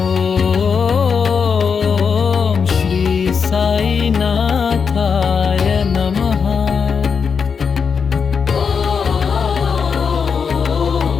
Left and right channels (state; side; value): quieter; right; 6.0 dB